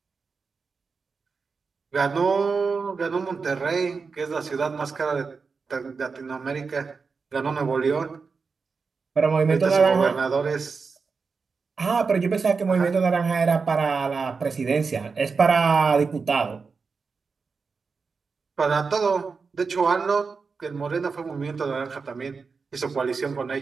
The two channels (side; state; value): left; quieter; 4.9 dB